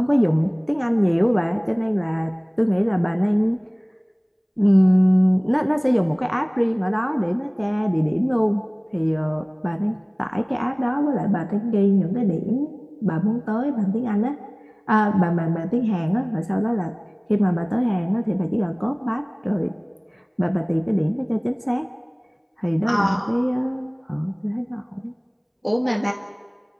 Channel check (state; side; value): identical; both; correlation 1.00